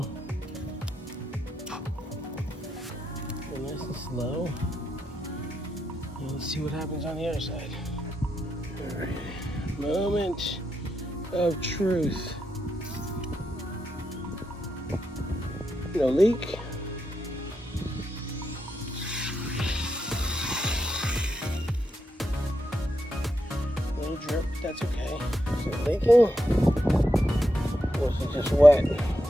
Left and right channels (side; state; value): both; normal; correlation 0.84